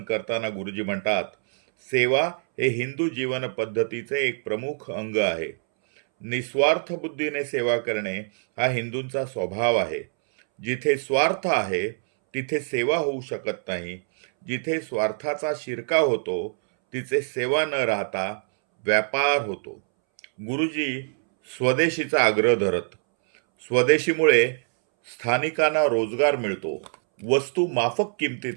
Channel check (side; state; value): left; silent; 62 dB below the other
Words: करताना गुरुजी म्हणतात, सेवा हे हिंदू जीवन पद्धतीचे एक प्रमुख अंग आहे. निस्वार्थ बुद्धीने सेवा करणे हा हिंदूंचा स्वभाव आहे. जिथे स्वार्थ आहे तिथे सेवा होऊ शकत नाही. जिथे स्वार्थाचा शिरकाव होतो तिथे सेवा न राहता व्यापार होतो. गुरुजी स्वदेशीचा आग्रह धरत. स्वदेशीमुळे स्थानिकांना रोजगार मिळतो, वस्तू माफक